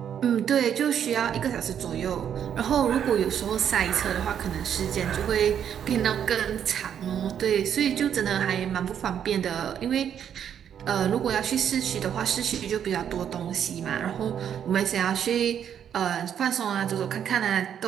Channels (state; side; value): quieter; left; 8.9 dB